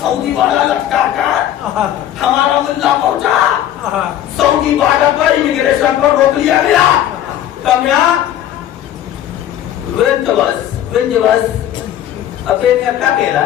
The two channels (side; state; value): right; quieter; 11.6 dB